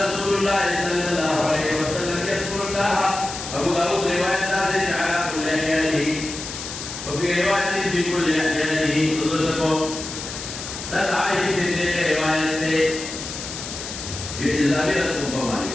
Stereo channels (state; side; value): noise; left; hiss, 8 dB below the sound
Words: الله صلى الله عليه وسلم يذكر الله أبو داود رواية نازل على كل أحيانه وفي وفي رواية في كل أحيانه تدرسكم تدعي في تلك رواية إلا بلدكم